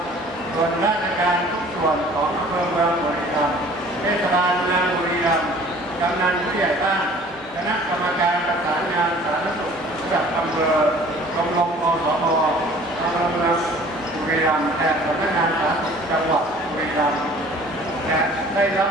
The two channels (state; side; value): normal; both; correlation 0.50